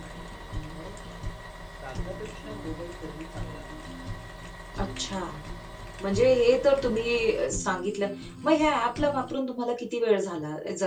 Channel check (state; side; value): identical; both; correlation 1.00